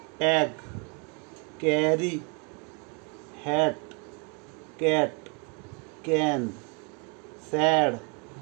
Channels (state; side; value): quieter; left; 34.8 dB